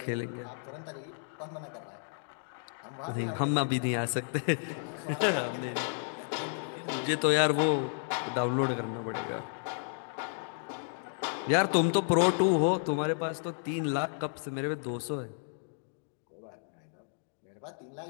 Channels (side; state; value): right; silent; digital silence